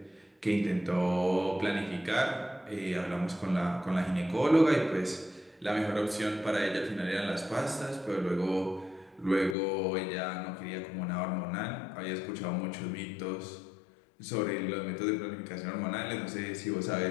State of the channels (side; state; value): right; drops out; at 9.6 s